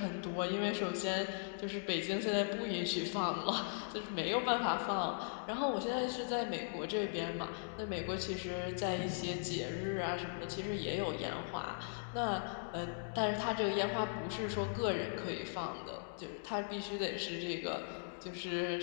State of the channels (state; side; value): silent; right; digital silence